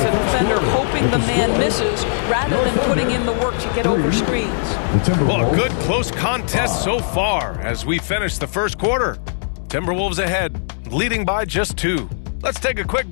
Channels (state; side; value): silent; right; 66 dB below the other